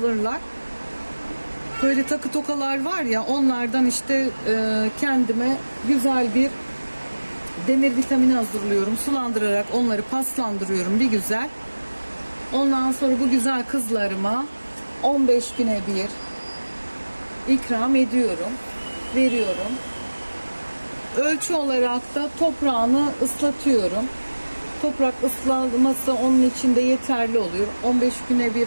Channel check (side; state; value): both; inverted; correlation -1.00